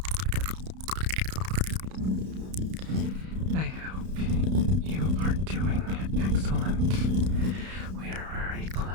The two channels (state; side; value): late; left; 32 ms